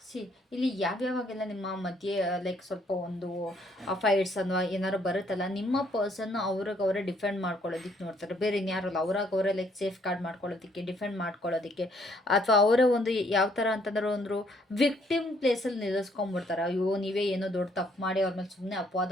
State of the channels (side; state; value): both; normal; correlation 0.67